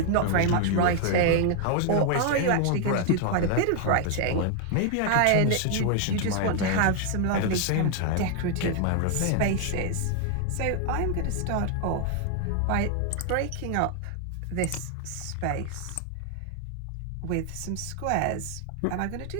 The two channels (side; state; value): both; different; correlation 0.00